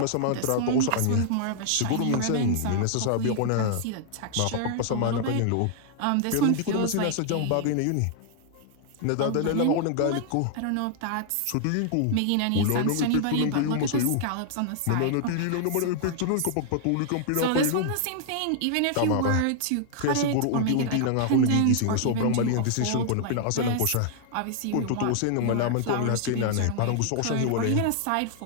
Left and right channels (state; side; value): different; both; correlation -0.01